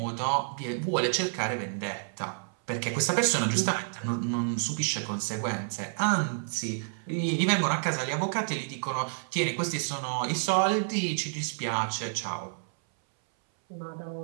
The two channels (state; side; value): silent; left; 58 dB below the other